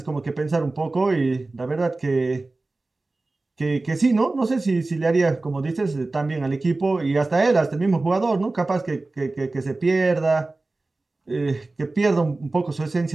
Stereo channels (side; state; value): left; quieter; 3.2 dB